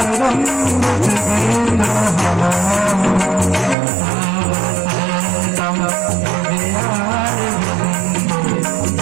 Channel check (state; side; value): drops out; left; at 3.8 s